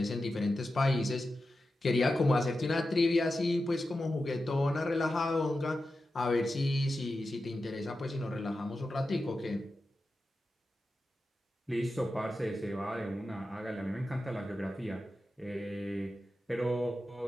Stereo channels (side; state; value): both; normal; correlation 0.91